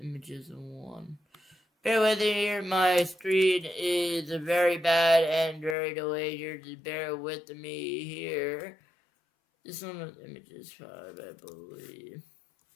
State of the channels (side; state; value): right; drops out; at 5.8 s